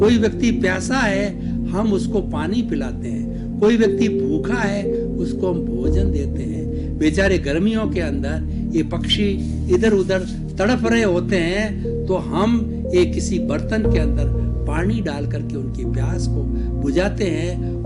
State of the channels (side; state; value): both; identical; correlation 1.00